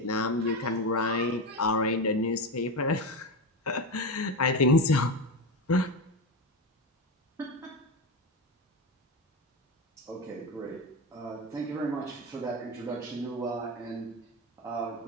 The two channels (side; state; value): both; normal; correlation 0.17